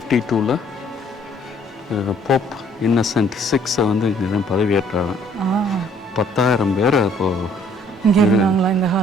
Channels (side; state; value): both; normal; correlation 0.61